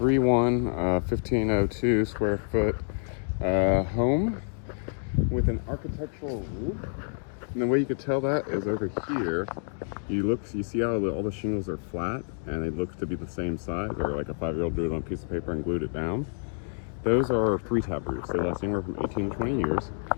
square foot home with an architectural roof. And the way you could tell that is over here. You see how all the shingles are flat and it looks to be the same size, or like a 5-year-old drew it on a piece of paper and glued it down. Those are 3-tab roofs. They last anywhere from 18 to 20 years.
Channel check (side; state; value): right; silent; digital silence